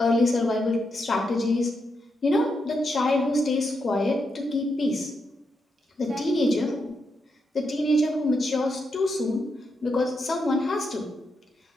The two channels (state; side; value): normal; both; correlation 0.83